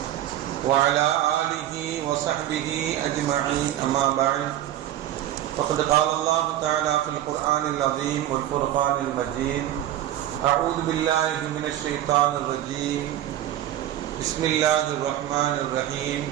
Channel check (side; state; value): left; quieter; 12.6 dB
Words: وعلى آله وصحبه أجمعين، أما بعد، فقد قال الله تعالى في القرآن العظيم والفرقان المجيد: أعوذ بالله من الشيطان الرجيم، بسم الله الرحمن الرحيم،